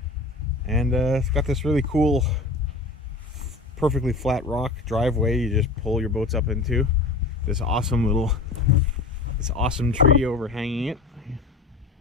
And it's got this really cool, perfectly flat rock driveway you just pull your boats up into. This awesome tree overhanging it.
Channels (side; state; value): right; quieter; 3.5 dB